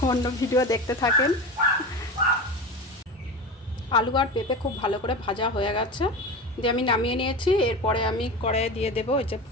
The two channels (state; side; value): normal; both; correlation 0.27